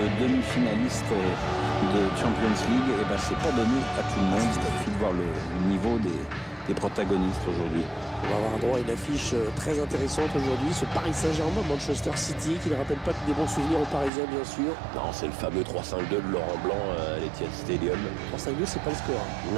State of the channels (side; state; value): left; drops out; at 14.1 s